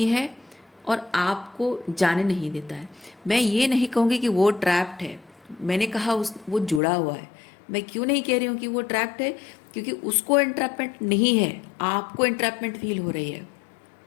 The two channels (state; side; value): drops out; right; at 6.8 s